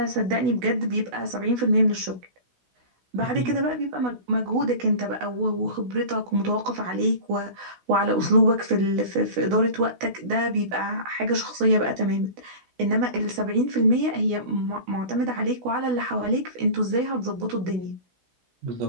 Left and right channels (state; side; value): late; left; 16 ms